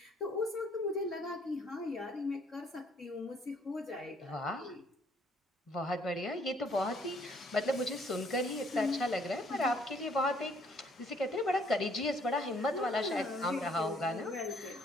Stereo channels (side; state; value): both; normal; correlation 0.64